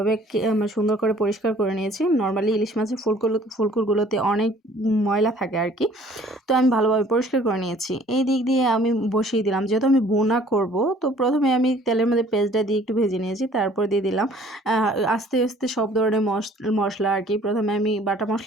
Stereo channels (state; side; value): normal; both; correlation 0.55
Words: সুন্দর করে পরিষ্কার করে নিয়েছি। নরমালি ইলিশ মাছের ফুলকুরগুলোতে অনেক ময়লা থাকে আর কি। তো আমি ভালোভাবে পরিষ্কার করে নিয়েছি। এই দিক দিয়ে আমি বসিয়ে দিলাম, যেহেতু আমি ভুনা করব। তো প্রথমে আমি তেলের মধ্যে পেঁয়াজটা দিয়ে একটু ভেজে নিয়েছি, তারপর দিয়ে দিলাম আস্তে আস্তে সব ধরনের মশলা আর কি। প্রথমে আমি বাটা